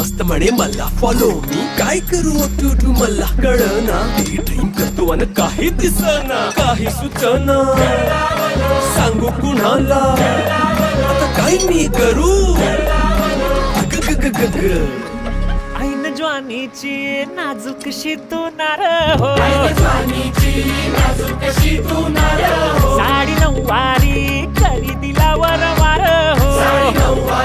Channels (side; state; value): both; identical; correlation 1.00